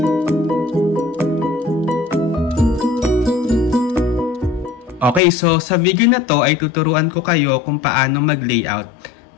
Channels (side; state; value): right; drops out; at 5.2 s